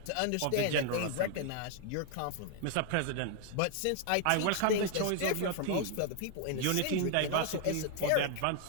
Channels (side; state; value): both; different; correlation 0.00